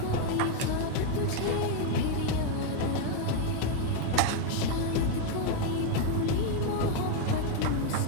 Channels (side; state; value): both; different; correlation 0.01